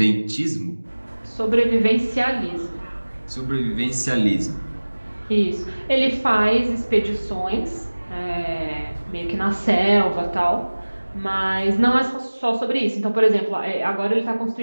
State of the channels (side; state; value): both; inverted; correlation -1.00